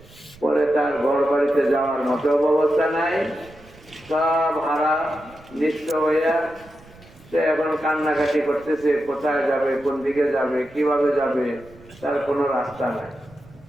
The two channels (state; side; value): noise; right; rumble, 24 dB below the sound